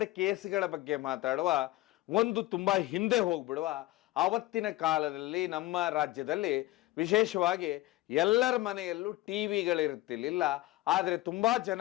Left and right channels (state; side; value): quieter; right; 17.2 dB